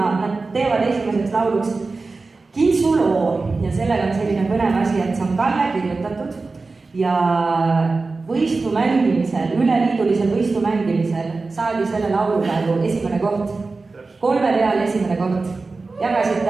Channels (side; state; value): left; quieter; 3.8 dB